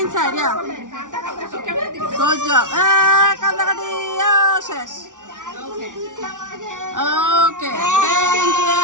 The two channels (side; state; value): left; late; 0.87 ms